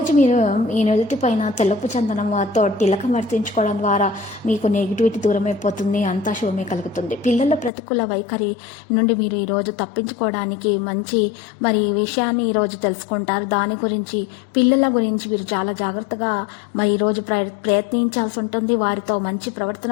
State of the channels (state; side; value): drops out; right; at 7.7 s